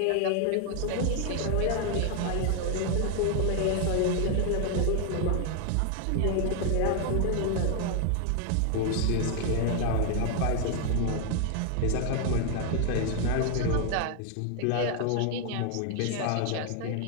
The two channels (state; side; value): different; both; correlation 0.00